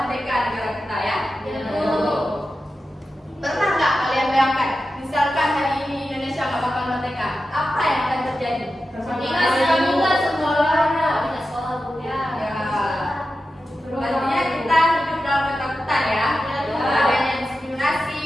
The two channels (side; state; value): both; normal; correlation 0.92